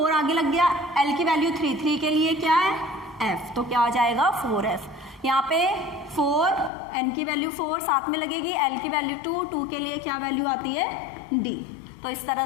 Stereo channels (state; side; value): drops out; right; at 6.7 s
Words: आगे लग गया, l की वैल्यू 3 3 के लिए क्या है f, तो क्या आ जाएगा 4f। यहाँ पे 4 n की वैल्यू 4 साथ में लगेगी, l की वैल्यू 2 2 के लिए क्या वैल्यू आती है d। तो इस तरह